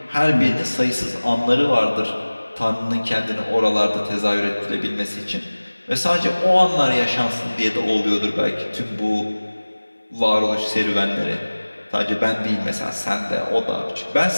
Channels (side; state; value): both; inverted; correlation -1.00